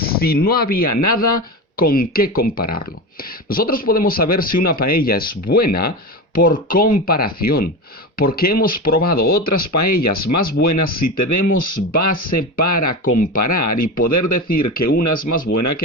no había nada con qué compararlo? Nosotros podemos saber si una paella es buena por comparación, porque hemos probado otras paellas más buenas si tenemos base para comparar y poder decir que una es más buena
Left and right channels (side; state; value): both; normal; correlation 0.23